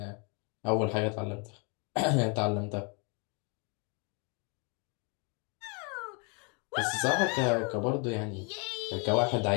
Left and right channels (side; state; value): right; quieter; 34.5 dB